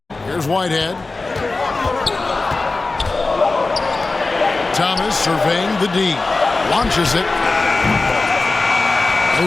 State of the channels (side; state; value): right; quieter; 3.5 dB